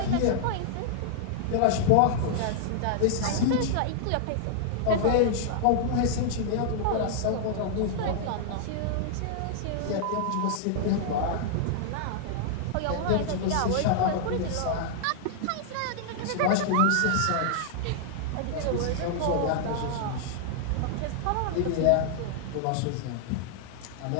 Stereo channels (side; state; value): both; different; correlation -0.01